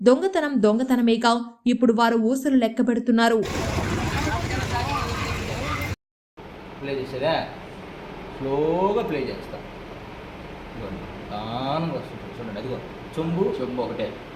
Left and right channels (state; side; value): identical; both; correlation 1.00